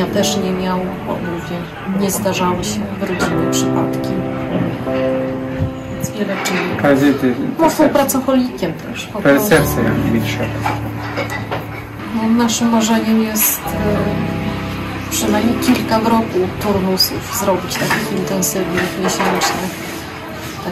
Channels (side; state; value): both; identical; correlation 1.00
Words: też nie miał, bo mówię, nie zdarzały się w rodzinie przypadki. Więc wiele czynników. Paryzyty. Mąż był pracocholikiem też. Po To jest prostu. serce, jak mi trzeba. No, naszym marzeniem jest przynajmniej kilka w roku turnusów zrobić, takich intensywnych, miesięcznych,